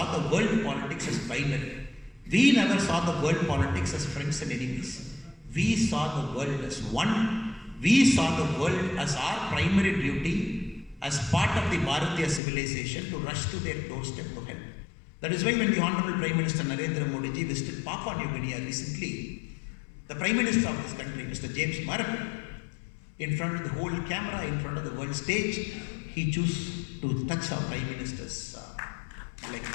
the world politics as binary. We never saw the world politics as friends and enemies. We saw the world as one. We saw the world as our primary duty as part of the Bharatiya civilization to rush to their doorstep to help. That is why when the Honorable Prime Minister Narendra Modi ji visited Papua New Guinea recently, the Prime Minister of this country, Mr. James Marape, in front of the whole camera, in front of the world stage, he chose to touch our Prime Minister's leg.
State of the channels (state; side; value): drops out; right; at 12.4 s